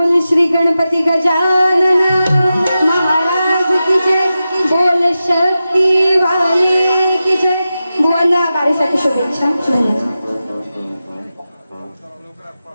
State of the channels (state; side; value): inverted; both; correlation -0.92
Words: श्री गणपती गजानन महाराज की जय, बोल शक्ती वाली की जय। बुवांना बारीसाठी शुभेच्छा। धन्यवाद।